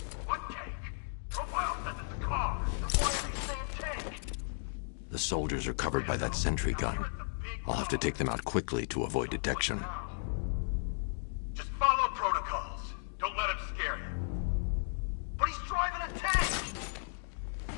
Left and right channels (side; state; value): right; silent; digital silence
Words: The soldiers are covered by that sentry gun. I'll have to take them out quickly to avoid detection. Just follow protocols. Don't let him scare you. But he's driving a tank!